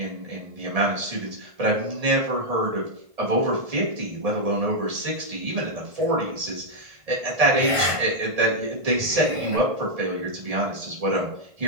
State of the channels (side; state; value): left; late; 1.8 ms